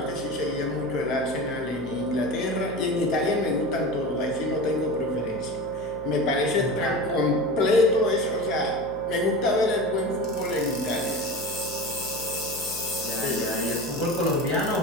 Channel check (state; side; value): noise; left; hum, 15 dB below the sound